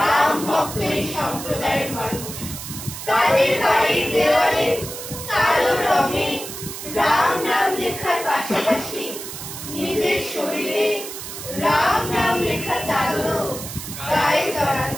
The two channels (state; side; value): noise; right; hiss, 9 dB below the sound